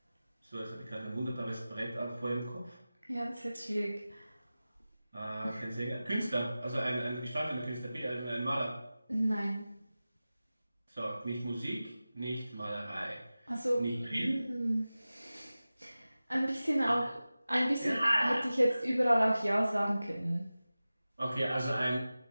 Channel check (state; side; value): inverted; both; correlation -0.96